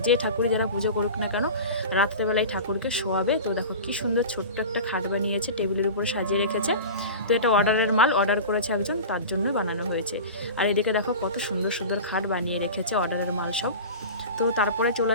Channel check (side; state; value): both; inverted; correlation -0.32